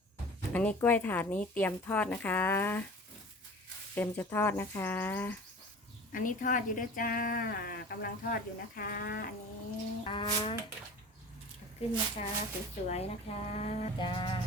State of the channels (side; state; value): both; normal; correlation 0.39